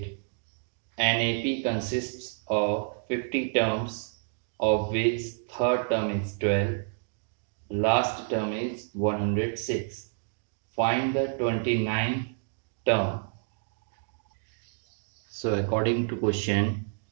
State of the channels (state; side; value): silent; left; digital silence